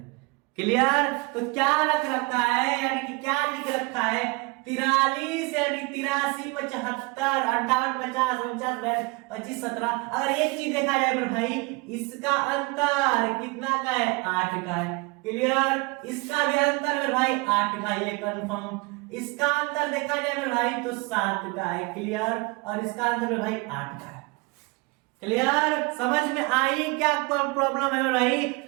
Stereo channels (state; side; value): quieter; left; 26.6 dB